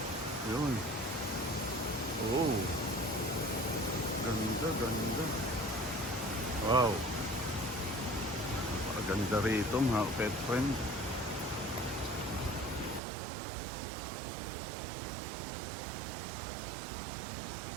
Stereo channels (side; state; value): left; drops out; at 13.0 s